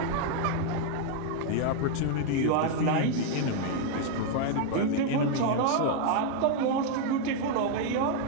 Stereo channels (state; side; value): different; both; correlation 0.00